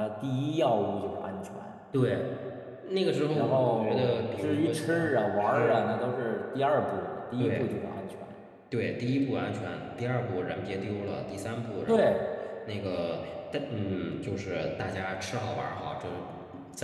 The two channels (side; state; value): both; identical; correlation 1.00